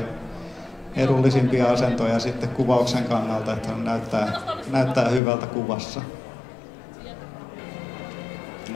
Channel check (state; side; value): drops out; right; at 5.2 s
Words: edullisimpia asentoja sitten kuvauksen kannalta, että näyttää hyvältä kuvassa.